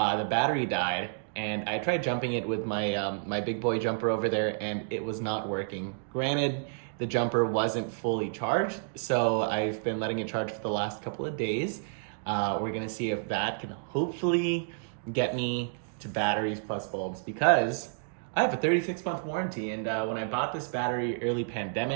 battery died, and I tried jumping it with my big boy jumper over there, and it was not working. Granted, the jumper wasn't fully charged, so I've been letting it charge for the last couple of days. We're gonna see if that can hopefully get me to batteries plus bulbs, because I have a 36-month warranty, and when I bought this battery early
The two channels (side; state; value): left; silent; digital silence